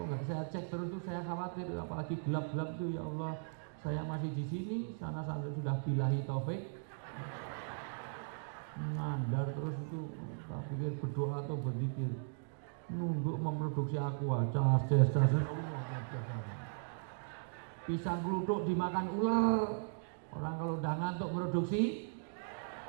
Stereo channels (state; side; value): silent; left; digital silence